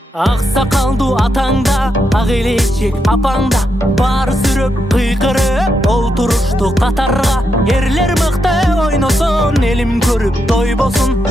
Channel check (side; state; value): both; normal; correlation 0.83